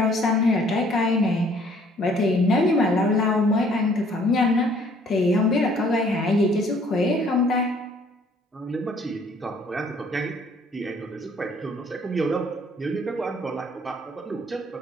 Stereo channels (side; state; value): both; normal; correlation 0.59